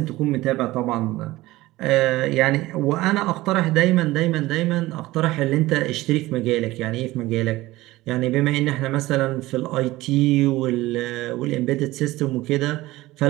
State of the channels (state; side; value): quieter; left; 18.2 dB